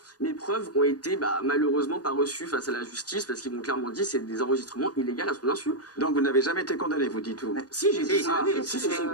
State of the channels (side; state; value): right; late; 0.68 ms